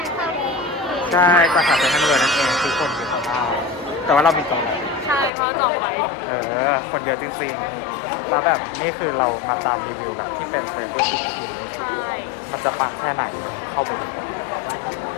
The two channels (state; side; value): drops out; right; at 5.3 s